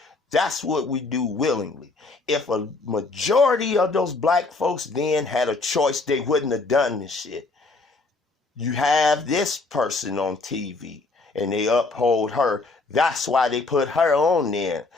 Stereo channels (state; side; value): quieter; right; 3.6 dB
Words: That's what we do willingly. If a majority of those black folks then had a choice, they wouldn't have done this shit. You have this person on TV and they uphold her. That's why they put her on there,